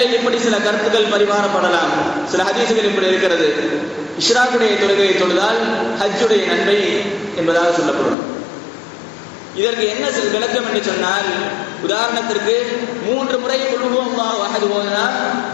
இப்படி சில கருத்துக்கள் பரிமாறப்படலாம். சில ஹதீசுகள் இப்படி இருக்கிறது, இஷ்ராக்குடைய தொழுகையை தொழுதால் ஹஜ்ஜுடைய நன்மை என்பதாக சொல்லப்படும். இதற்கு என்ன விளக்கம் என்று சொன்னால், உதாரணத்திற்கு 3 முறை குல் ஹுவல்லாஹு அஹத் ஓதினால்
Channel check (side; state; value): right; drops out; at 8.2 s